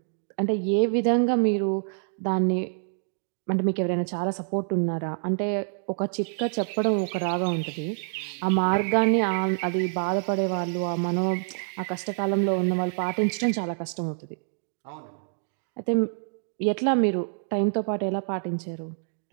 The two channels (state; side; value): silent; left; digital silence